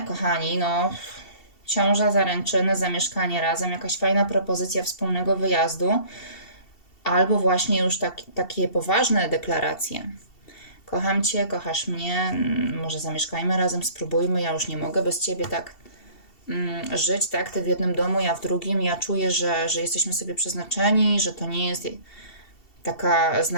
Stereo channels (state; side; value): late; right; 2.7 ms